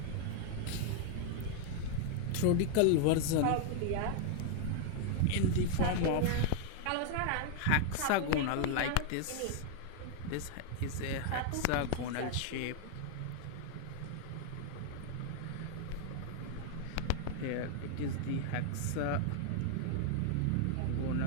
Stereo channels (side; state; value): both; different; correlation 0.00